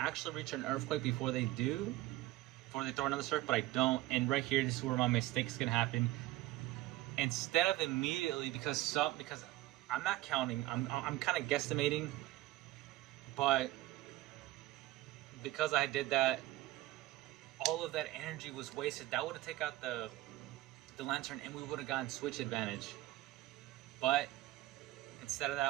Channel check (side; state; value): left; quieter; 17.4 dB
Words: reach an Earthquake before they throw another surf, but I don't. And right here, this is where my mistake is going to happen. Instead of immediately, because I'm not counting, I'm kind of guesstimating. But because I did that, all of that energy was wasted. That would have taken out the Lantern, and we would have gotten switch advantage. But Instead of